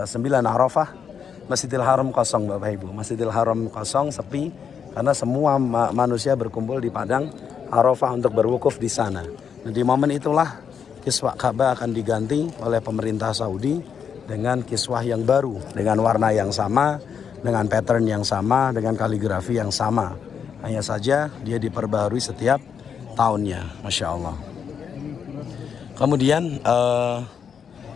9 Arafah, Masjidil Haram kosong Bapak Ibu. Masjidil Haram kosong, sepi, karena semua manusia berkumpul di padang Arafah untuk berwukuf di sana. Nah, di momen itulah kiswah Ka'bah akan diganti oleh pemerintah Saudi dengan kiswah yang baru, dengan warna yang sama, dengan pattern yang sama, dengan kaligrafi yang sama. Hanya saja dia diperbarui setiap tahunnya, Masya Allah. Kemudian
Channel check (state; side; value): quieter; right; 7.2 dB